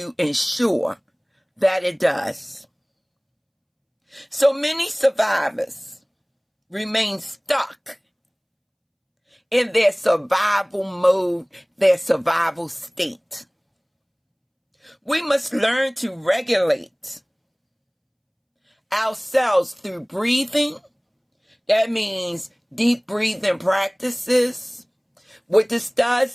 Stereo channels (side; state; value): both; identical; correlation 1.00